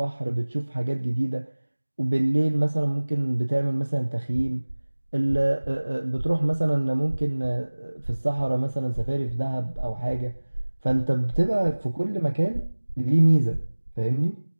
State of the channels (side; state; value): both; inverted; correlation -1.00